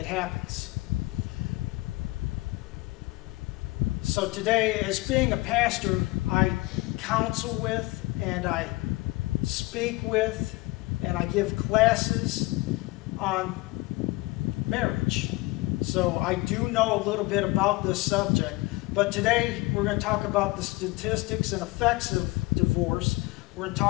happens. So today, as being a pastor, I counsel with, and I speak with, and I give classes on marriage. So I do know a little bit about this subject. But today, we're going to talk about the statistics and effects of divorce. We're going to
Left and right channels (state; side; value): quieter; right; 21.6 dB